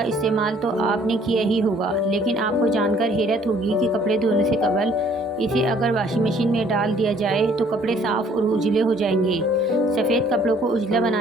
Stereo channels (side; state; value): both; normal; correlation 0.59